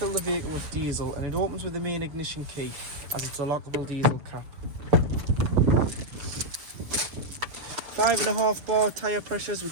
the vehicle with diesel, and it opens with the main ignition key, as it's a lockable diesel cap. 5.5 bar tyre pressures,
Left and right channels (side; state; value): left; late; 6.8 ms